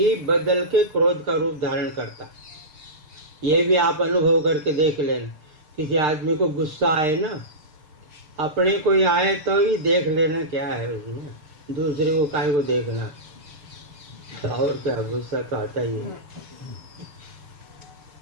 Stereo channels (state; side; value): late; left; 6.7 ms